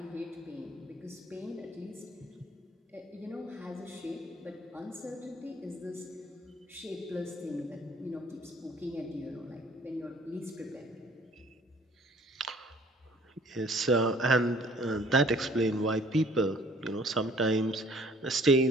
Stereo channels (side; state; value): both; normal; correlation 0.56